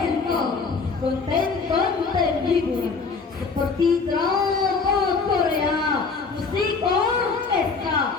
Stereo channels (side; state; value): right; quieter; 4.7 dB